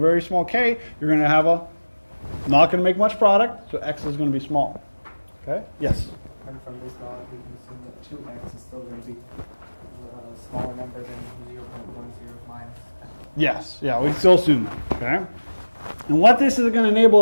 small k, you're going to have not going to make much product, so X is going to be small. Okay? Yes? And from this law, we can assume that 2x is still going to be a smaller number than 0.10 minus 10. Yes. Yeah, we still assume that. Okay? And what this is going to enable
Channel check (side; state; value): both; inverted; correlation -1.00